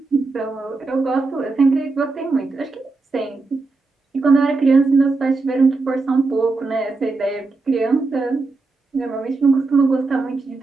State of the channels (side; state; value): left; quieter; 3.7 dB